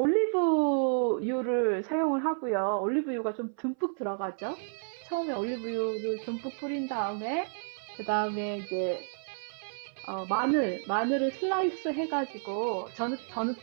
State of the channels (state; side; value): silent; left; 57 dB below the other